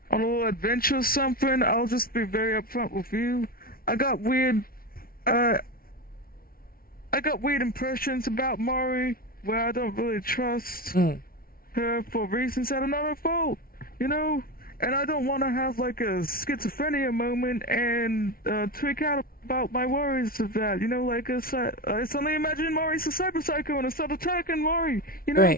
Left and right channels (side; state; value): right; late; 0.43 ms